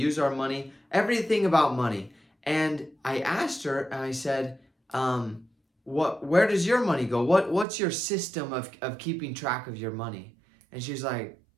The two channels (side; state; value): left; drops out; at 7.7 s